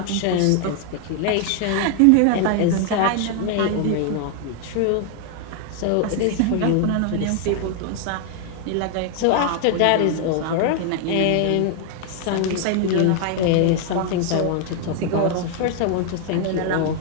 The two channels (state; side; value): different; both; correlation 0.00